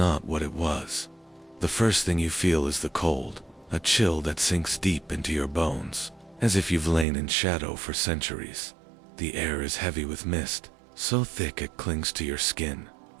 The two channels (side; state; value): left; drops out; at 7.1 s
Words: what it was. The first thing you feel is the cold, a chill that sinks deep into your bones, as if you've lain in shadow for centuries. The air is heavy with mist, so thick it clings to your skin,